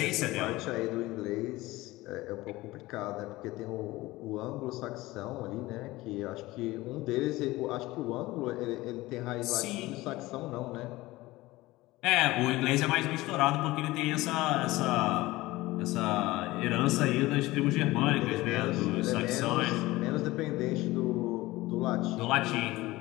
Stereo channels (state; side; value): quieter; right; 19.0 dB